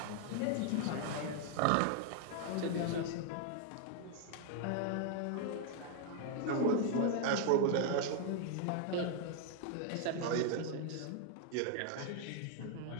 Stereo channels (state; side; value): different; both; correlation 0.00